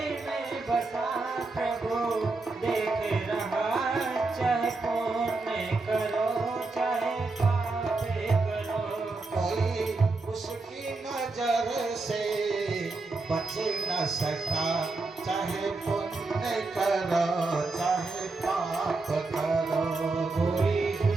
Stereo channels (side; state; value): left; quieter; 3.6 dB